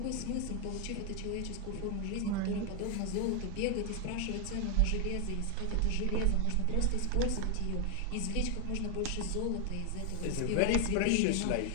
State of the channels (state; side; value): different; both; correlation 0.00